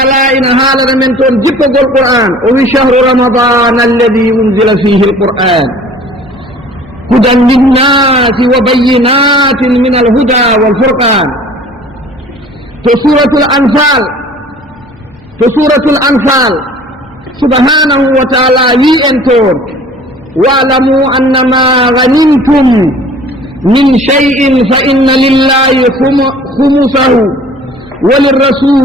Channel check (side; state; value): both; normal; correlation 0.48